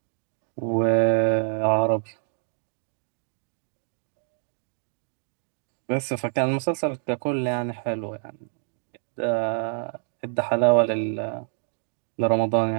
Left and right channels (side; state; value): left; silent; digital silence